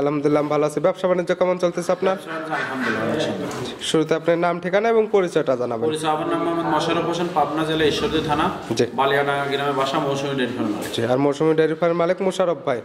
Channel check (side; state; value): both; identical; correlation 1.00